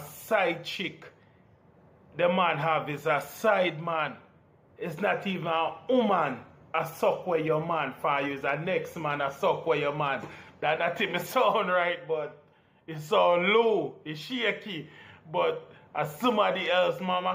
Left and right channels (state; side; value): identical; both; correlation 1.00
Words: chick, the man have is a side man. It's not even a woman. A suck where your man for you is a next man a suck where your man. That not even sound right, but it sound low, it's shaky. But as somebody else,